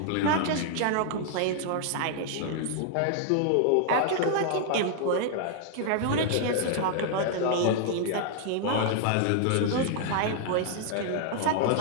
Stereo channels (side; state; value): both; different; correlation -0.01